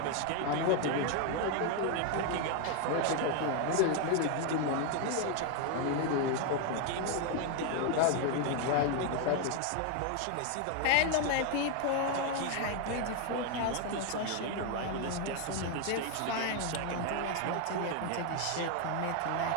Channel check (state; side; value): different; both; correlation 0.01